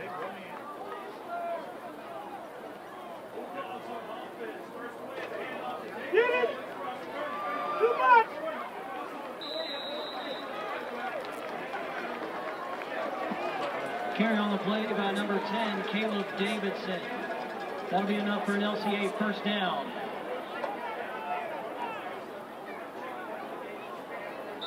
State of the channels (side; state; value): both; identical; correlation 1.00